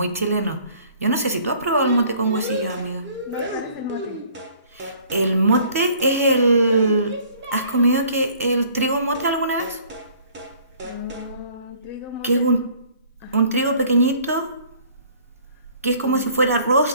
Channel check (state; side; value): inverted; both; correlation -0.55